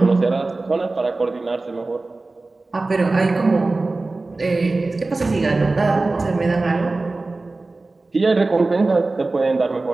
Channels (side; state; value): left; quieter; 3.3 dB